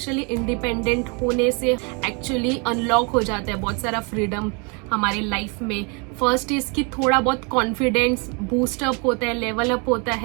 इंडिपेंडेंट होने से एक्चुअली अनलॉक हो जाता है बहुत सारा फ्रीडम हमारे लाइफ में। फर्स्ट इज कि थोड़ा बहुत कॉन्फिडेंस बूस्ट अप होता है, लेवल अप होता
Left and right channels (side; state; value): left; quieter; 33.2 dB